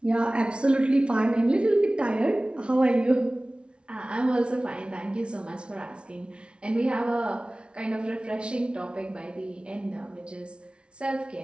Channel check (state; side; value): late; left; 0.058 ms